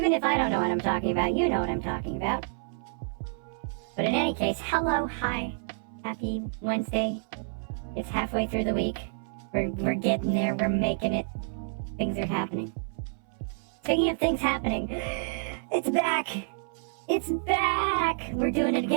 if I don't know what I'm talking about, you know what I'm talking about. But in any case, hello, hi, happy Wednesday. It's halfway through the week. We're getting there, we're making it. Things are happening. Speaking of things happening, it's back! It's back! We're doing it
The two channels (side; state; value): left; silent; 59 dB below the other